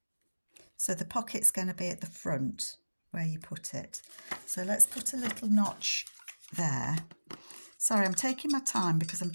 So the pocket's going to be at the front where you put it. So let's put a little notch there. Sorry, I'm taking my time because I'm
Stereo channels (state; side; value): inverted; both; correlation -1.00